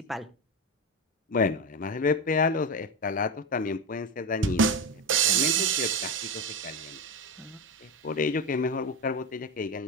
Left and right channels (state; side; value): normal; both; correlation 0.15